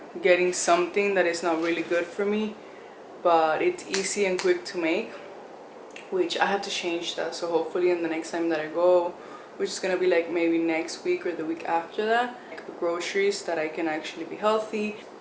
getting something that is not really good for me, but it's easy and quick to make, which I have to change that. So hopefully in the next time that I go, which is gonna be like maybe next week or the week after that, like groceries that I can actually be healthy.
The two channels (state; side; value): identical; both; correlation 1.00